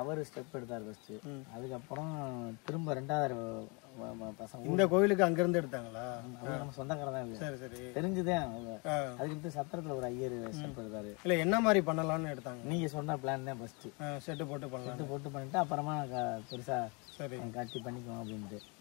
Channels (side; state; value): right; quieter; 31.2 dB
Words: ஸ்டெப் எடுத்தார் ஃபர்ஸ்ட். அதுக்கப்புறம் திரும்ப 2வது பசங்க இந்த கோயிலுக்கு அங்கிருந்து எடுத்தாங்களா? நம்ம சொந்தக்காரர் தான். சரி சரி தெரிஞ்சுதான். அதுக்கு சத்திரத்துல ஒரு ஐயர் ஸ்டெப் எடுத்தாரு. இல்ல என்ன மாதிரி பண்ணலாம்னு எடுத்தாங்க? நீங்க சொன்ன பிளான் தான் ஃபர்ஸ்ட். செட்டு போட்டு பண்ணலாம். செட்டு போட்டு பண்ணிட்டு அப்புறமா பெருசா காட்சி பண்ணிக்குவோம் அப்படின்ட்டு.